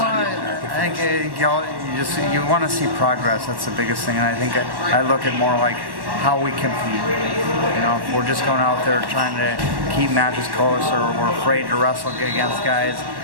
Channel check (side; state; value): left; late; 1.1 ms